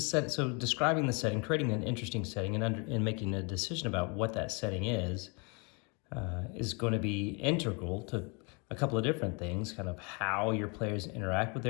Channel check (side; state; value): right; quieter; 32.3 dB